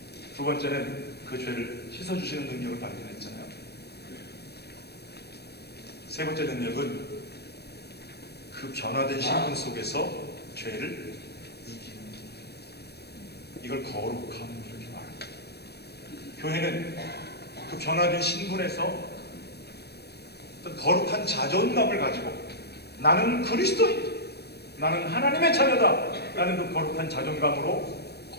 두 번째는 그 죄를 씻어주시는 능력을 발견했잖아요. 세 번째 능력은 그 변화된 신분 속에서 죄를 이기는, 이걸 거룩함 이렇게 말합니다. 교회는 그 변화된 신분에서 어떤 거룩한 자존감을 가지고 나는 그리스도인, 나는 하나님의 자녀다, 나는 그 거룩한 자존감으로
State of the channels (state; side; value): late; right; 0.47 ms